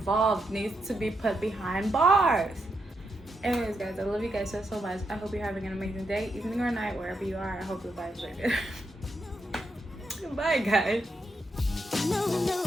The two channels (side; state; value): both; normal; correlation 0.82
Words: needs to be put behind bars. Anyways, guys, I love you guys so much. I hope you're having an amazing day, evening, or night, wherever you are. I hope the vibes are good. Bye, guys.